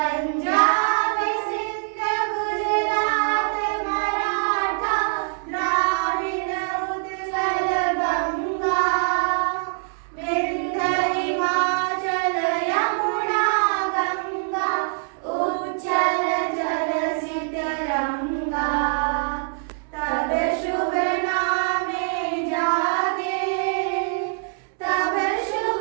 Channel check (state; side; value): silent; left; 63 dB below the other